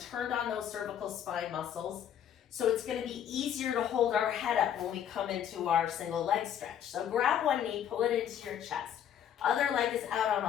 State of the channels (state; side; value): quieter; right; 9.6 dB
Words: on those cervical spine muscles, so it's going to be easier to hold our head up when we come into our single leg stretch. So grab one knee, pull it into your chest. Other leg is out